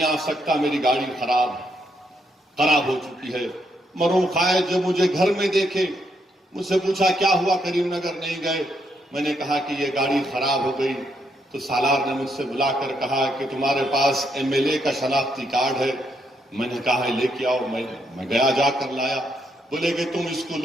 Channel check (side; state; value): both; normal; correlation 0.77